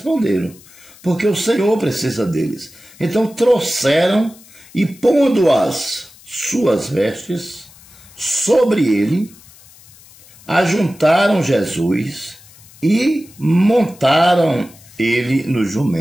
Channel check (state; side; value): noise; left; hiss, 24 dB below the sound